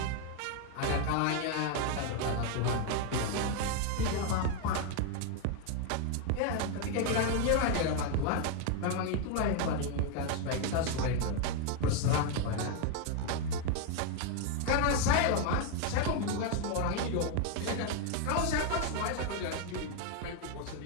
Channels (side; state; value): both; different; correlation 0.01